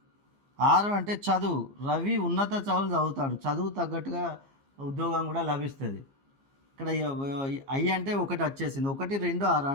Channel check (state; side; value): late; left; 15 ms